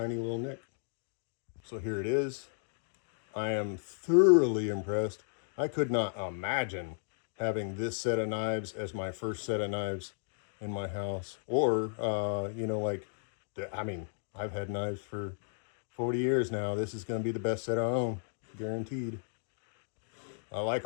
little nick. So here it is. I am thoroughly impressed. I could not imagine having this set of knives as my first set of knives in my house. Or, you know, like, I mean, I've had knives for 40 years now. This is going to be the best set I own, guaranteed. I like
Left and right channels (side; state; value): right; silent; digital silence